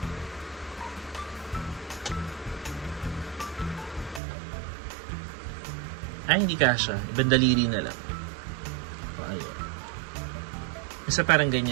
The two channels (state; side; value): drops out; left; at 4.2 s